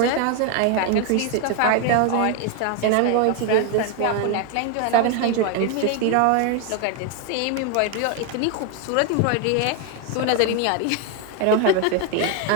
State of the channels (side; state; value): both; different; correlation 0.01